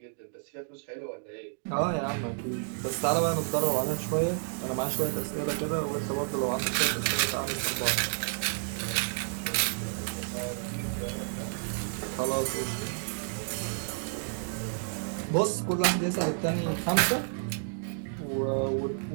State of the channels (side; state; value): left; silent; digital silence